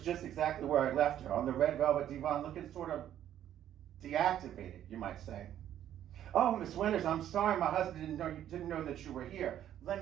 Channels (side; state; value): left; quieter; 11.1 dB